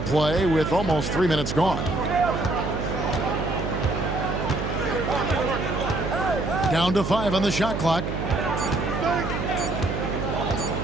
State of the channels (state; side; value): noise; right; hum, 4 dB below the sound